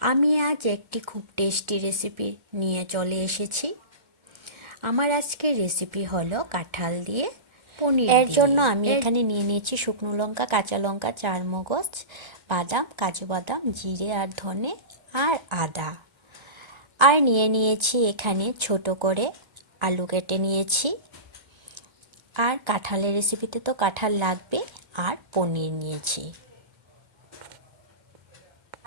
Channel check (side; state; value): left; late; 2.1 ms